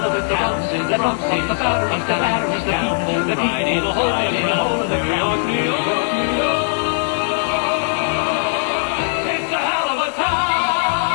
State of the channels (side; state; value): right; silent; digital silence